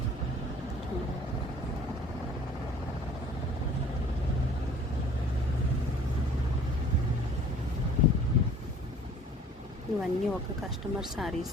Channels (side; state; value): both; normal; correlation 0.51